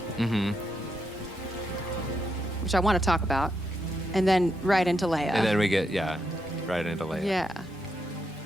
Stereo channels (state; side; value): normal; both; correlation 0.81